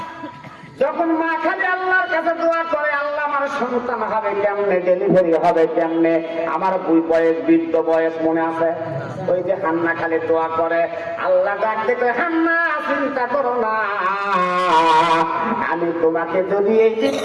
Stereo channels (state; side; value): identical; both; correlation 1.00